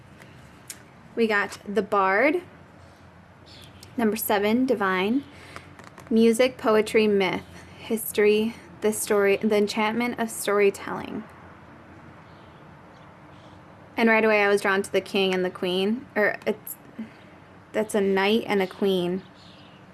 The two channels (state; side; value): identical; both; correlation 1.00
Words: We got the Bard. Number 7, divine. Music, poetry, myth, history, the story, the enchantment of storytelling. And right away I was drawn to the king and the queen. That's a knight and a queen.